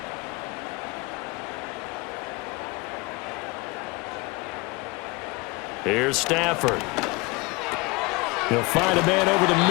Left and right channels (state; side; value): quieter; right; 24.8 dB